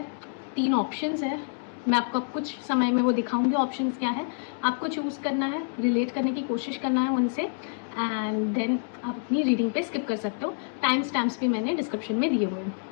3 ऑप्शंस है। मैं आपको कुछ समय में वो दिखाऊंगी ऑप्शंस क्या है, आपको चूज़ करना है, रिलेट करने की कोशिश करना है उनसे, एंड देन आप अपनी रीडिंग पे स्किप कर सकते हो। टाइम स्टैम्प्स भी मैंने डिस्क्रिप्शन में दिए हुए हैं।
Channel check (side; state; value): right; silent; digital silence